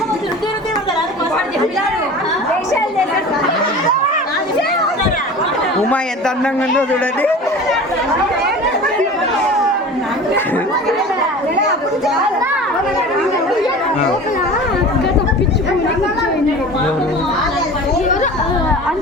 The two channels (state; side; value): normal; both; correlation 0.37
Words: ఉమా ఎంత అందంగా ఉందో చూడండి.